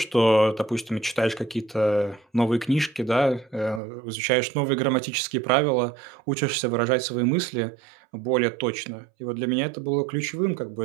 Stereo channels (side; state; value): left; drops out; at 3.8 s